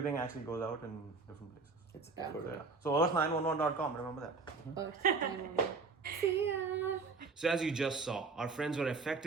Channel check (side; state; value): left; quieter; 4.4 dB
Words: actually goes out in different places. It's Yeah. effort. So, yeah. So earth911.com, remember that. Earth, See ya. So as you just saw, our friends were